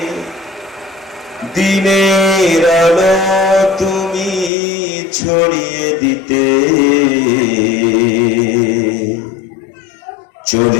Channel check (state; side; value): drops out; right; at 4.5 s